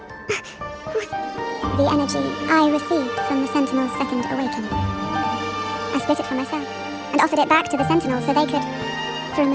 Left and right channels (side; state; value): both; identical; correlation 1.00